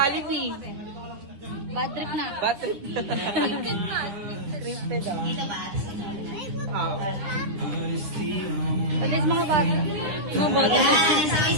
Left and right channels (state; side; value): late; left; 10 ms